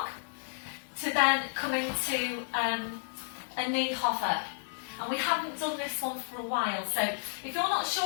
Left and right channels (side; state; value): right; silent; digital silence